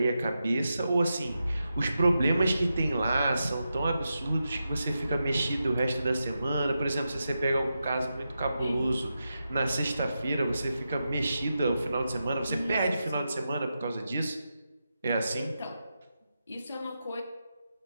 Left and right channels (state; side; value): inverted; both; correlation -0.88